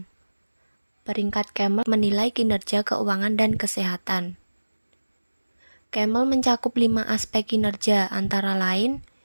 Peringkat Camel menilai kinerja keuangan dan kesehatan. Camel mencakup 5 aspek kinerja antara lain,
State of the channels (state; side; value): inverted; both; correlation -1.00